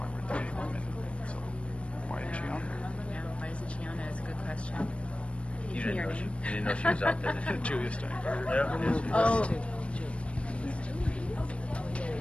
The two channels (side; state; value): right; late; 0.061 ms